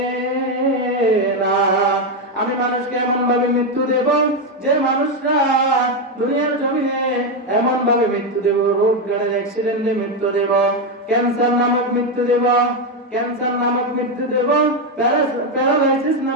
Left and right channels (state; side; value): normal; both; correlation 0.07